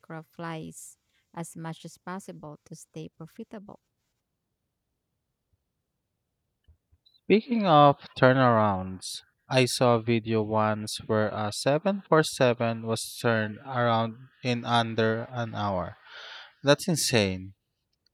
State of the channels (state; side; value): identical; both; correlation 1.00